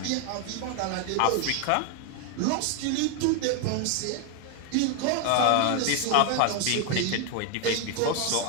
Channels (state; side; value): different; both; correlation 0.01